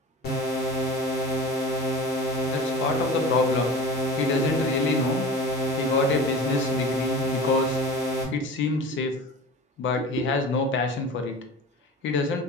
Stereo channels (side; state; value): both; normal; correlation 0.36